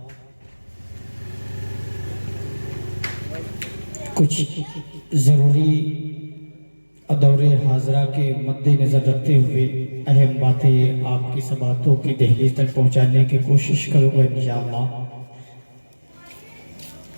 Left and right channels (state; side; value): inverted; both; correlation -1.00